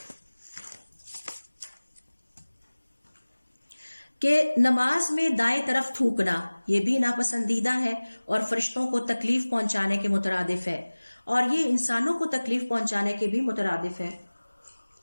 کہ نماز میں دائیں طرف تھوکنا، یہ بھی ناپسندیدہ ہے اور فرشتوں کو تکلیف پہنچانے کے مترادف ہے، اور یہ انسانوں کو تکلیف پہنچانے کے بھی مترادف ہے.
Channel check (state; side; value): inverted; both; correlation -1.00